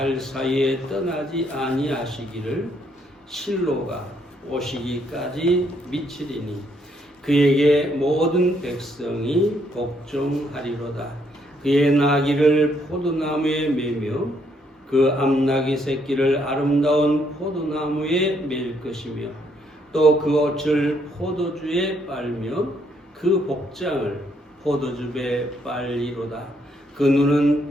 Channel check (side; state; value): both; normal; correlation 0.72